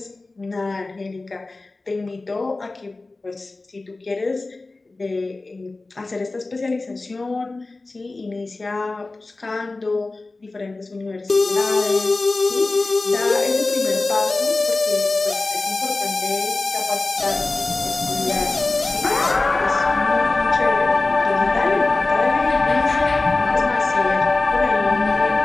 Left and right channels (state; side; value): quieter; right; 3.3 dB